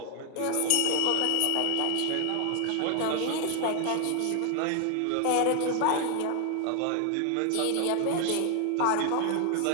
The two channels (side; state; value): both; different; correlation 0.00